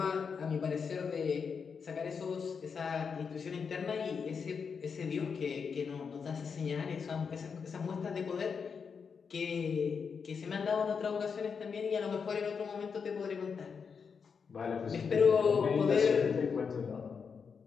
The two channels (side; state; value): right; quieter; 6.0 dB